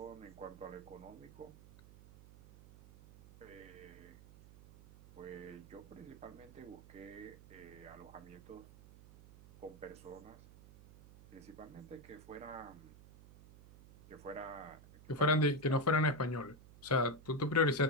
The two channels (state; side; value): noise; right; hum, 19 dB below the sound